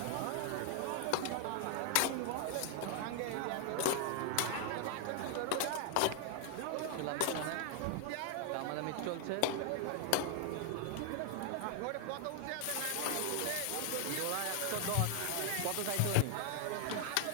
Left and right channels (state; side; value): different; both; correlation 0.00